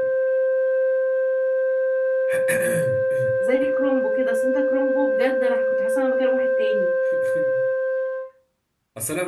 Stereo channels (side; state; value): both; identical; correlation 1.00